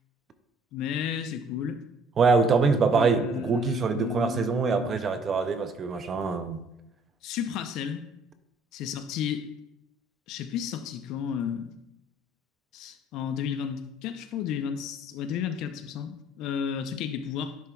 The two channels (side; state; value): both; normal; correlation 0.58